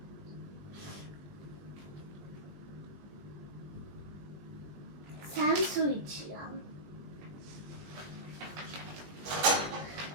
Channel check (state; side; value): late; left; 20 ms